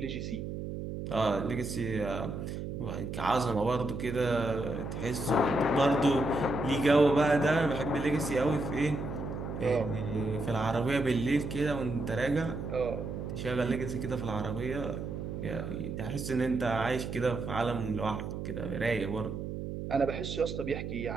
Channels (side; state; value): right; noise; hum, 6 dB below the sound